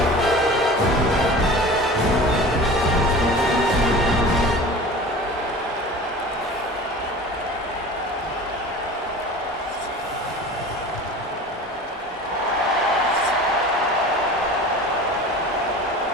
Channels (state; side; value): normal; both; correlation 0.38